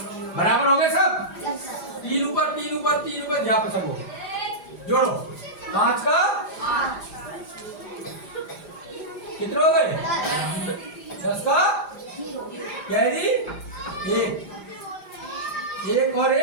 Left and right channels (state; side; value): late; right; 5.0 ms